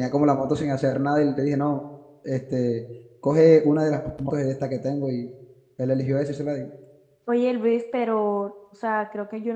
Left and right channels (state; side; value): identical; both; correlation 1.00